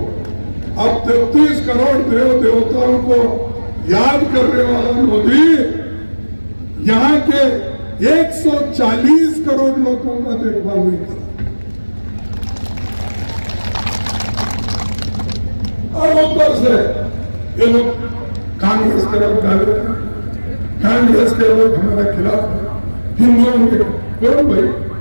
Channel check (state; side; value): inverted; both; correlation -1.00